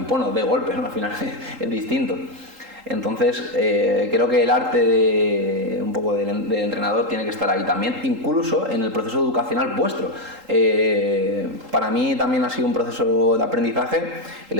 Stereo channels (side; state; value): left; late; 3.8 ms